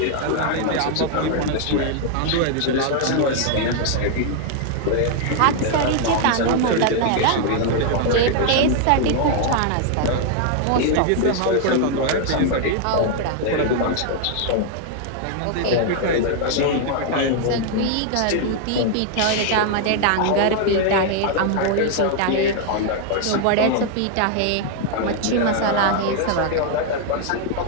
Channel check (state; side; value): different; both; correlation 0.00